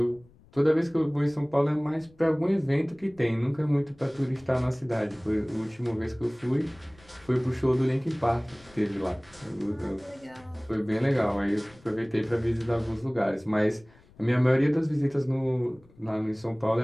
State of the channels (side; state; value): left; noise; rumble, 27 dB below the sound